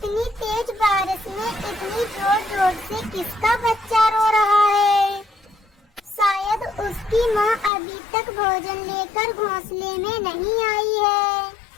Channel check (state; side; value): drops out; right; at 7.7 s